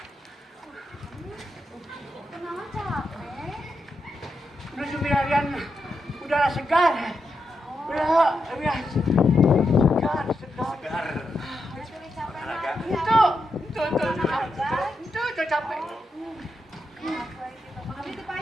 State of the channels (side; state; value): both; normal; correlation 0.85